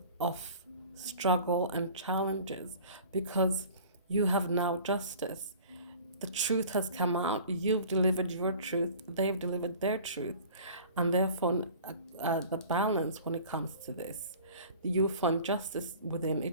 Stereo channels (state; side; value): inverted; both; correlation -0.44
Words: of struggle and challenges, because you have now justice. The truth has come out. You've delivered your truth. They've delivered their truth. And therefore, the balance when it comes to this, you find justice within